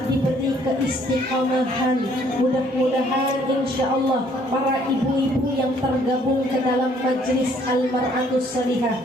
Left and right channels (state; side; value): normal; both; correlation 0.63